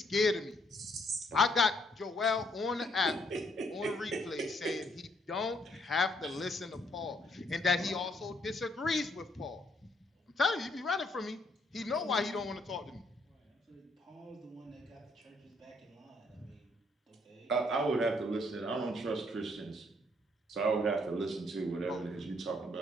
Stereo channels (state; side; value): normal; both; correlation 0.70